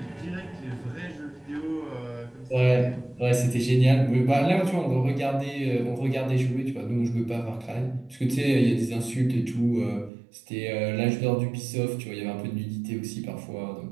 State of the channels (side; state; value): left; drops out; at 10.1 s